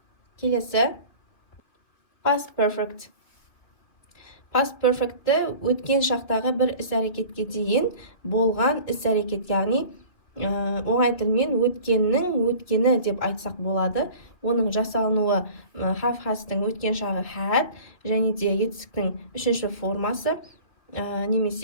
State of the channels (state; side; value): late; right; 2.1 ms